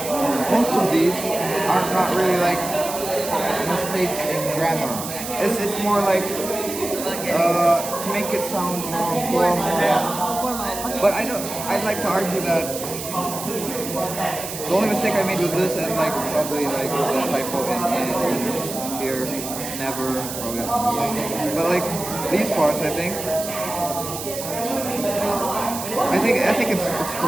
most of these are not really like mistakes in grammar. It's more like to make it sound more formal. But I'd like to argue that the only mistake I made was this and like probably like the typo in here, never, probably. But like these parts, I think it's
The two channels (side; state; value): right; noise; hiss, 8 dB below the sound